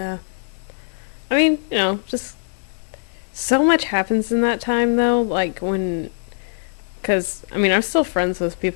I mean, just so much happens in that time, though. Like, because, I mean, I'm still friends with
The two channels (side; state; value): right; silent; 59 dB below the other